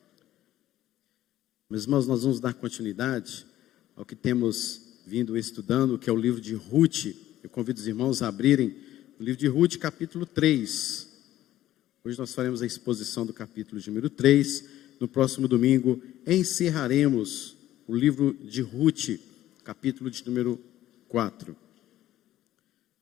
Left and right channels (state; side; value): quieter; right; 13.7 dB